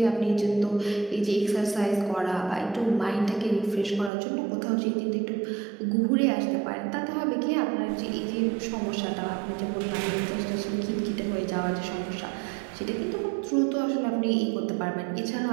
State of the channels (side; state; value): left; drops out; at 4.1 s